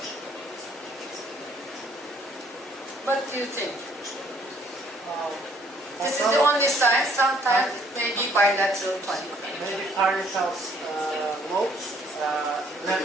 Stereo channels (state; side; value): normal; both; correlation 0.63